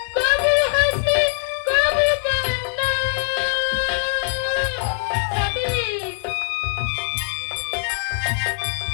কবু হাসি কবু কান্না। স্বামী,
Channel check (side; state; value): right; silent; digital silence